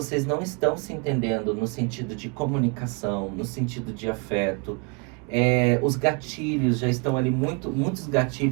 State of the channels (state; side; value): quieter; left; 33.1 dB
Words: não estão se entendendo no sentido de comunicação, no sentido de afeto, os gatilhos já estão ali, muitos